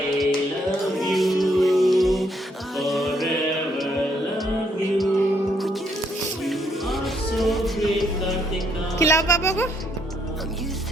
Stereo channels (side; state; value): both; normal; correlation 0.71